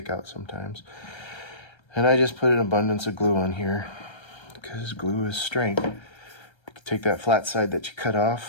out sometimes. And I just put an abundance of glue on here because glue is strength. You can take that flat side that you cut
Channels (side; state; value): right; late; 1.3 ms